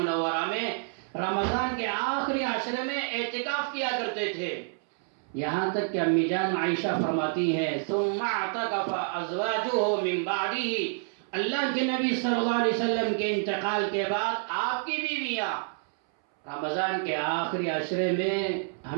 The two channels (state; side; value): silent; left; 59 dB below the other